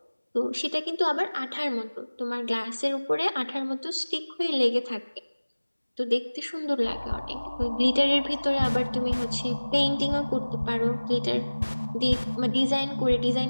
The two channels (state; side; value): inverted; both; correlation -1.00